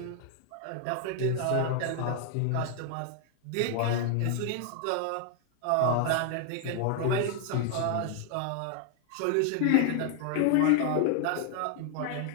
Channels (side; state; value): both; different; correlation 0.00